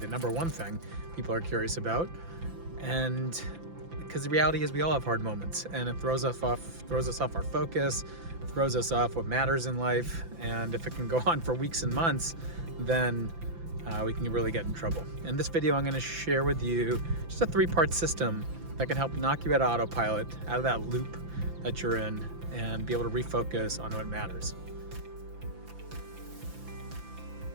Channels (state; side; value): late; left; 5.9 ms